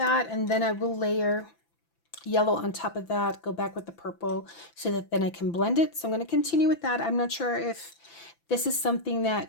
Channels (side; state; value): right; late; 5.9 ms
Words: and then I will layer yellow on top of that, go back with the purple so that then I can blend it. So I'm going to continue with that. I'm not sure if this is something